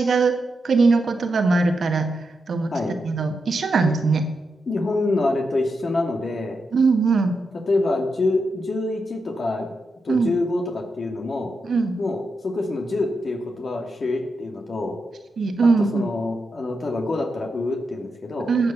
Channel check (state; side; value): normal; both; correlation 0.86